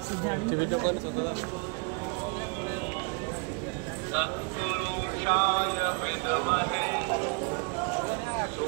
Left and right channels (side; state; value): left; quieter; 33.6 dB